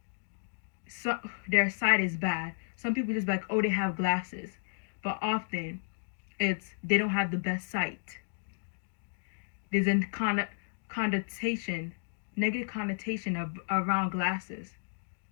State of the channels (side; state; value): right; silent; digital silence